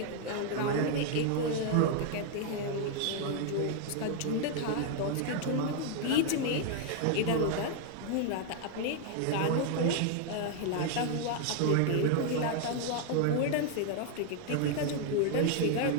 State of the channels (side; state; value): both; different; correlation 0.00